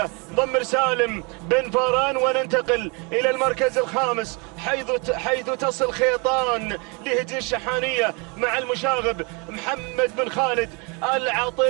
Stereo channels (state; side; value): quieter; left; 31.0 dB